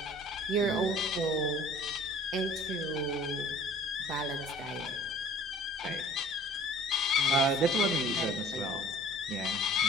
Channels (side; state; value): both; normal; correlation 0.50